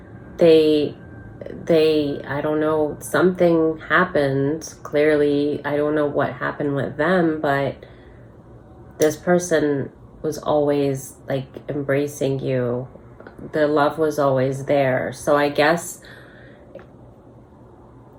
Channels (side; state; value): both; identical; correlation 1.00